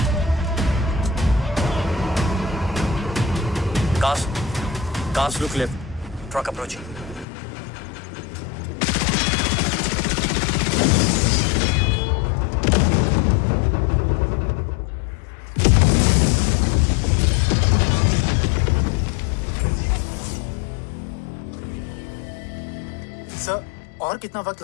Cars look left. Truck approaching. Sir, और कितना वक्त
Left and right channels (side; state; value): right; drops out; at 7.2 s